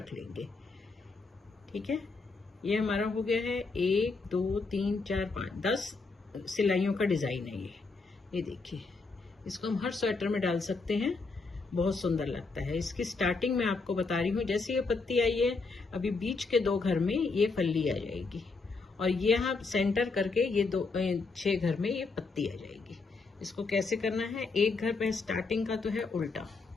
लेंगे। ठीक है, ये हमारा हो गया है 1 2 3 4 5 10 सिलाइयों का डिज़ाइन है ये देखिए। इसको हम हर स्वेटर में डाल सकते हैं, बहुत सुंदर लगता है। इसकी स्टार्टिंग में आपको बता रही हूँ। जैसे ये पत्ती आई है, अभी बीच के 2 घर में ये फल्ली आ जाएगी और ये यहाँ सेंटर करके ये 6 घर में ये पत्ती आ जाएगी। इसको कैसे करना है, एक घर पे स्टार्टिंग का तो है उल्टा।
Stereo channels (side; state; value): right; quieter; 4.1 dB